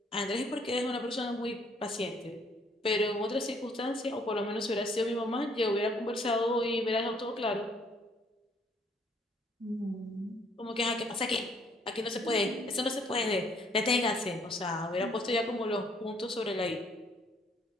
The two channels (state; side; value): normal; both; correlation 0.64